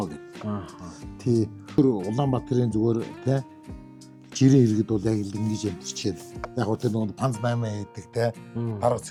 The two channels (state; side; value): identical; both; correlation 1.00